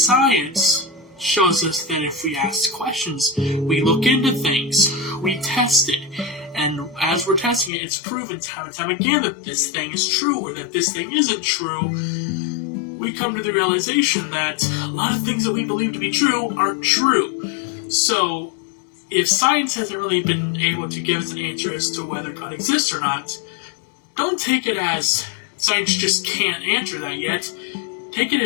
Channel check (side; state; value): right; drops out; at 7.7 s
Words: shows us that if we ask questions, we look into things, we test it, and as we're testing it, it's proven time and time again that this thing is true or that this thing isn't true. We come to the realization that a lot of things that we believe to be true aren't true. So, if science hasn't really been able to give us an answer as to whether God exists or not, don't take it as science just can't answer that yet. Take it